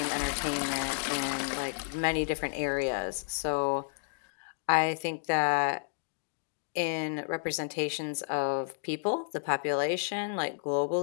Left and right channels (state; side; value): silent; right; digital silence